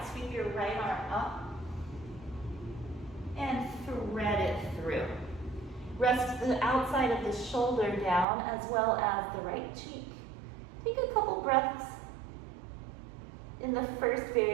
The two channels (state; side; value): drops out; left; at 8.2 s